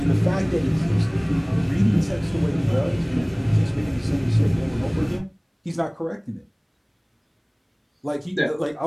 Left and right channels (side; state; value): both; identical; correlation 1.00